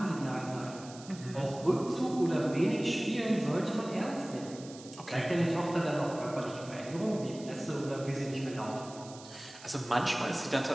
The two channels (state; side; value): noise; right; hiss, 18 dB below the sound